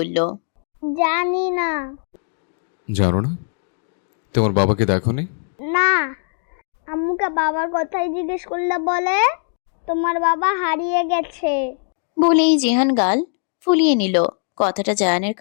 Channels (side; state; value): right; silent; 58 dB below the other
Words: জানি না। জানো না? তোমার বাবাকে দেখোনি? না, আম্মুকে বাবার কথাই জিজ্ঞেস করলে বলে তোমার বাবা হারিয়ে গেছে। বলেই জিহান গাল ফুলিয়ে নিল। কথাটা জায়ানের